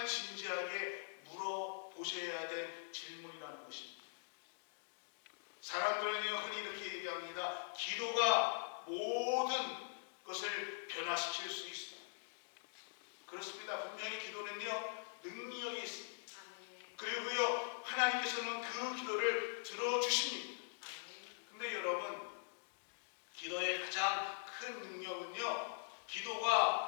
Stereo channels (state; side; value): silent; right; digital silence